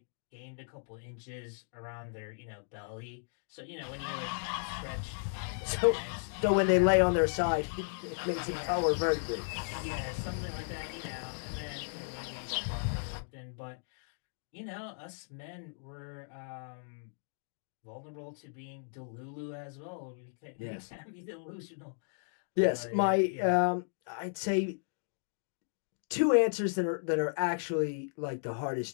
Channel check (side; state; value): right; silent; digital silence